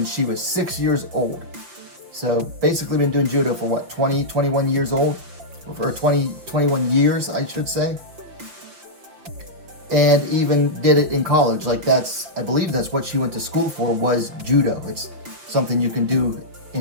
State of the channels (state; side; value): late; left; 5.7 ms